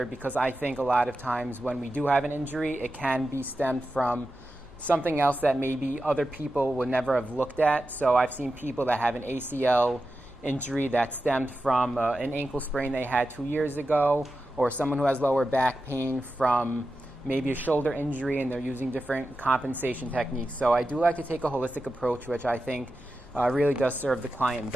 because I think a lot of times when we do have an injury, it can be stemmed from something else that maybe other people would never have looked at. So I've seen people that have an ACL injury that stemmed from an ankle sprain they had 2 years ago, or someone who has lower back pain from maybe a shoulder injury, and they're using different compensation techniques. So I do like to take a holistic approach, which I think really does serve the client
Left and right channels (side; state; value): both; normal; correlation 0.91